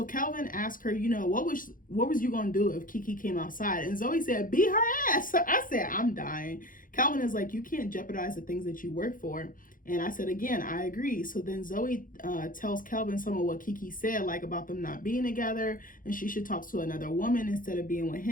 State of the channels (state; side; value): late; right; 0.40 ms